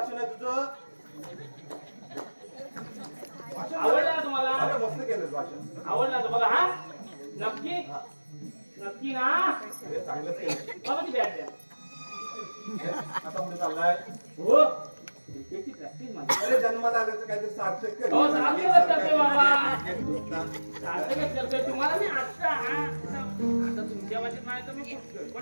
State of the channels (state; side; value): inverted; both; correlation -1.00